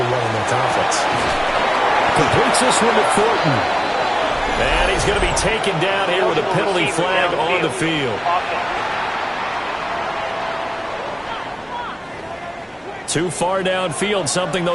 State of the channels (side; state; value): both; identical; correlation 1.00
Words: 1 in their conference. Completes this one to Thornton. And he's going to be taken down here with a penalty flag on the field. Too far downfield, something